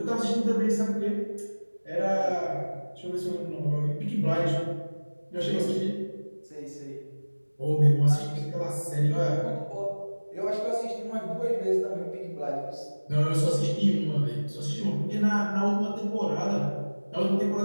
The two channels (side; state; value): both; inverted; correlation -1.00